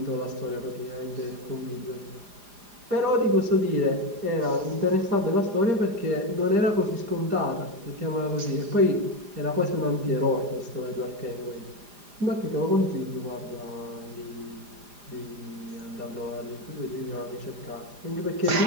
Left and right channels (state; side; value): late; left; 4.9 ms